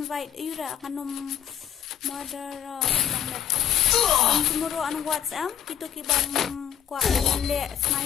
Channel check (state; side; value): quieter; right; 9.5 dB